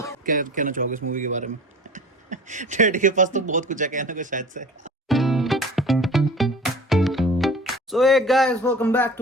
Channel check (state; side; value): normal; both; correlation 0.41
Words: क्या कहना चाहोगे इस मूवी के बारे में? डैडी के पास तो बहुत कुछ है कहने को शायद से। So hey guys, welcome back